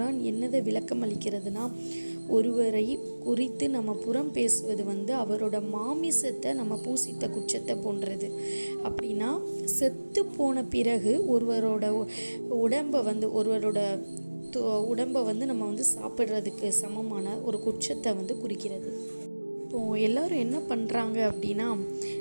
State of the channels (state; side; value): inverted; both; correlation -1.00